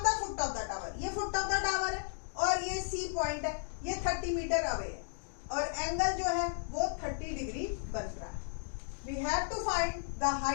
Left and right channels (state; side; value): silent; right; digital silence